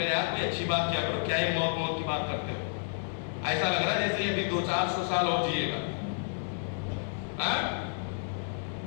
یار کوئی اچھی بات کیا کرو, کیا یہ موت کی بات کرتے ہو, ایسا لگ رہا ہے جیسے یہ بھی 200-400 سال اور جیے گا.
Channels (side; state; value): right; silent; digital silence